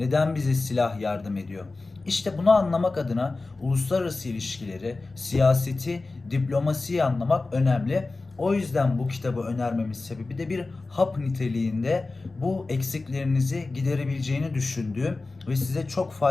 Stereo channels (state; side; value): quieter; right; 3.5 dB